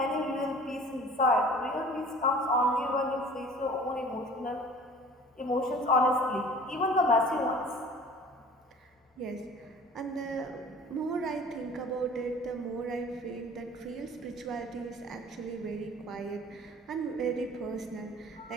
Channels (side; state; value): both; normal; correlation 0.46